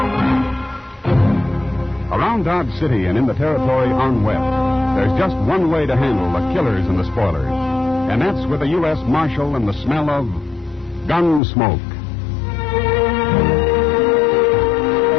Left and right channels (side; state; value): right; drops out; at 11.4 s